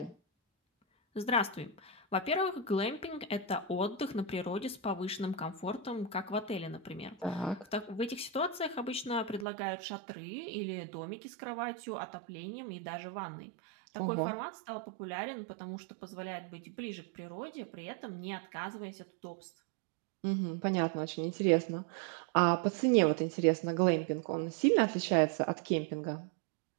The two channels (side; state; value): left; drops out; at 9.5 s